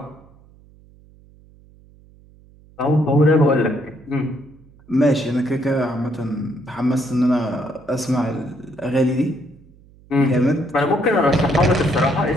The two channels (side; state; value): right; noise; hum, 26 dB below the sound